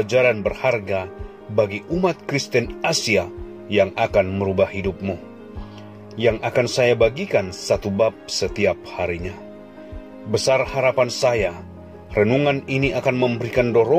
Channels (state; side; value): identical; both; correlation 1.00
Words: berharga bagi umat Kristen Asia yang akan merubah hidupmu, yang akan saya bagikan satu bab setiap harinya. Besar harapan saya, renungan ini akan memberikan